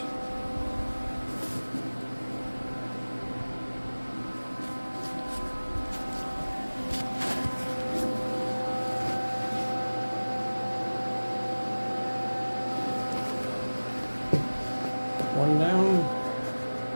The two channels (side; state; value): both; inverted; correlation -1.00